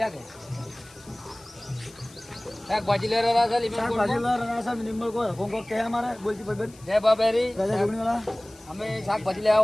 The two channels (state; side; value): noise; left; hiss, 23 dB below the sound